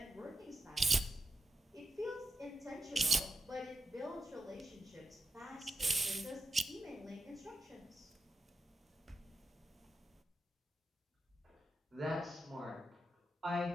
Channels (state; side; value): normal; both; correlation 0.85